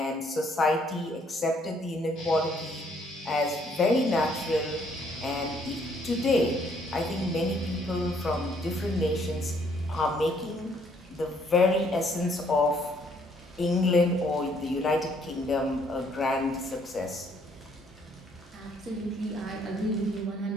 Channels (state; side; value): normal; both; correlation 0.66